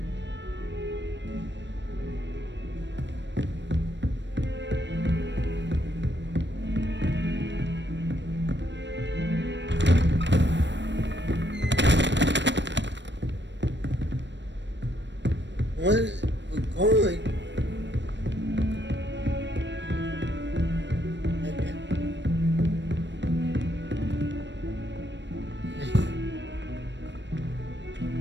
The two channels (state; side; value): late; left; 0.53 ms